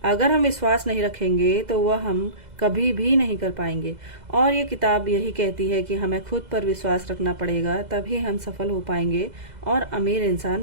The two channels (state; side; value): late; left; 2.0 ms